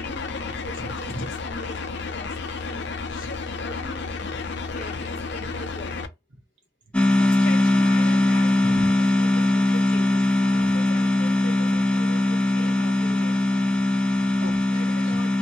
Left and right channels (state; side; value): normal; both; correlation 0.92